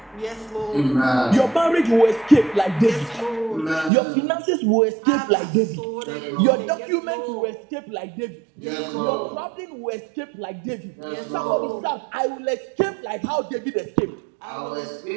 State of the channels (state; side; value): drops out; left; at 3.9 s